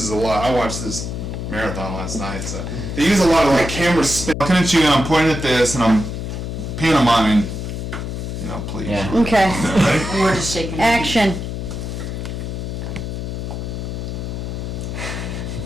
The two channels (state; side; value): noise; left; hum, 5 dB below the sound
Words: a lot. I watched this marathon last night, so they use a lot of like camera spin. I'm looking at you and I'm pointing at this and I'm pantomiming. You know, please. Yeah. Okay. Ready? And we're just shaking. Action.